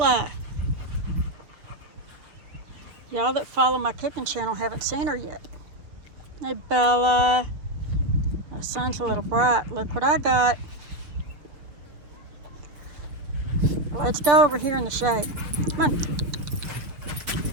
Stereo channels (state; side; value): late; left; 6.4 ms